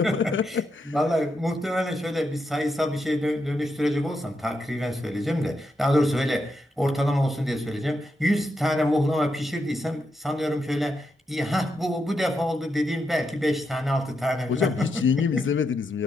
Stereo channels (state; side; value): normal; both; correlation 0.83